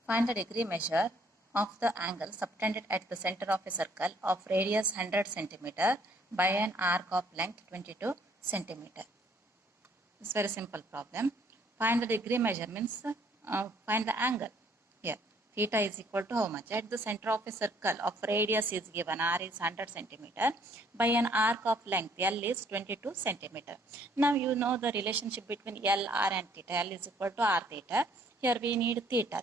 Find the degree measure of the angle subtended at the center of a circle of radius 100 centimeter by an arc of length 22 centimeter. It's very simple problem. Find the degree measure means find the angle. Here, theta is equal to how much? At the center of a circle of radius is given, r is 100 centimeter, by an arc of length, l is 22 centimeter. Now you know the relationship between l, r and theta. L is equal to r theta. Here we need theta.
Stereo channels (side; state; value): both; normal; correlation 0.63